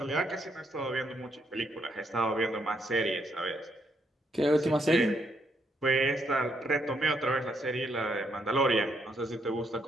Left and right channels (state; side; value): normal; both; correlation 0.75